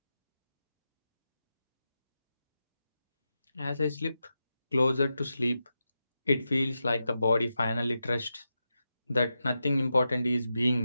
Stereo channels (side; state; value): both; inverted; correlation -0.89